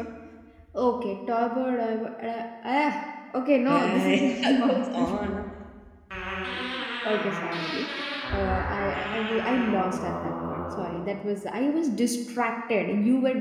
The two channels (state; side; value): identical; both; correlation 1.00